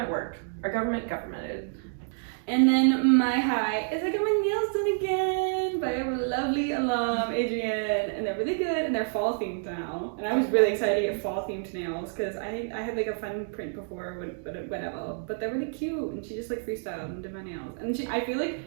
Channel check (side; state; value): left; silent; digital silence